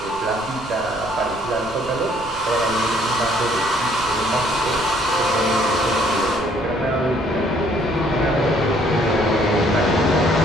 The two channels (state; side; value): noise; right; rumble, 20 dB below the sound